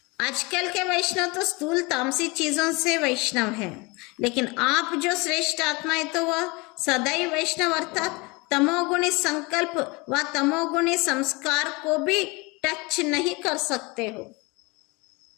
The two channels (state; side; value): quieter; right; 26.3 dB